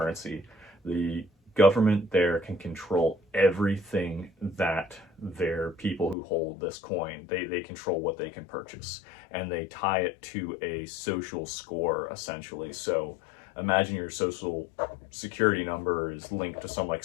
The government there can control everything that their people who hold this coin, they control what they can purchase, and they tie it to a social score, essentially. So imagine your social security number is linked to some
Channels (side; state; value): right; drops out; at 6.2 s